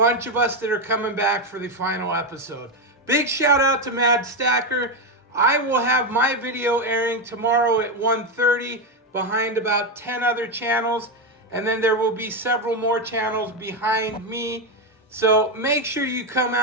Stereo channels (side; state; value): both; normal; correlation 0.09